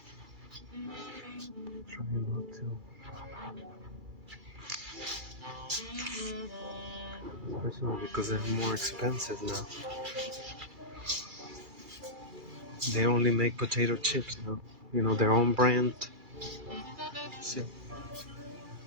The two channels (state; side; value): late; left; 3.3 ms